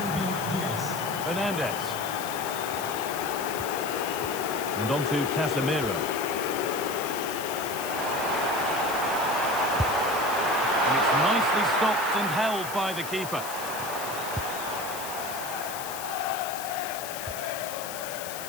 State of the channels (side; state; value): left; noise; hiss, 9 dB below the sound